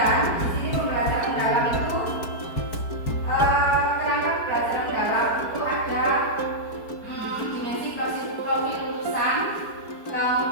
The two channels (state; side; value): late; right; 4.6 ms